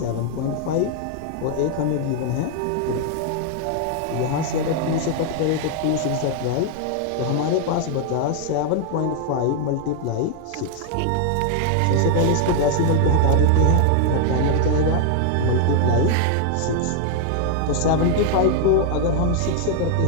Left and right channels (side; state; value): both; different; correlation 0.00